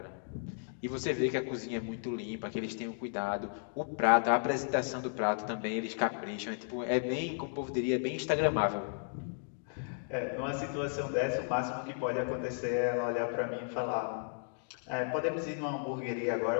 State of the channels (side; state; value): right; silent; digital silence